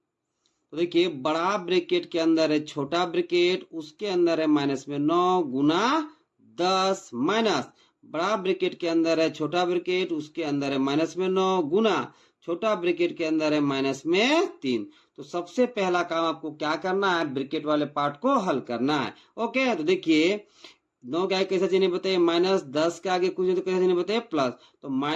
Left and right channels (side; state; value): both; identical; correlation 1.00